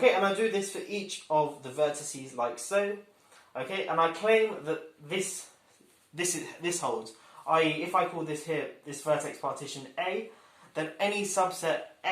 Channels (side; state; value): both; identical; correlation 1.00